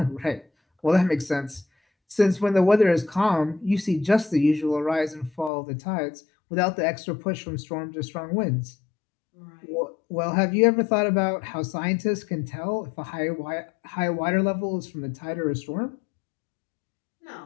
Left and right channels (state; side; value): drops out; right; at 5.5 s